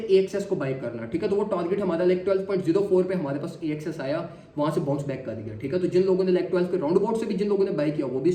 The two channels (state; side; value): identical; both; correlation 1.00